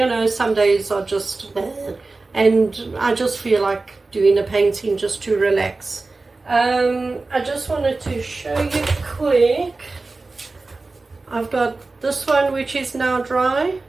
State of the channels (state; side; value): quieter; left; 3.5 dB